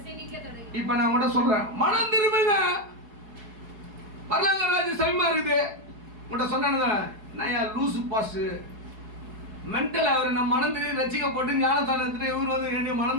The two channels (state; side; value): late; left; 4.7 ms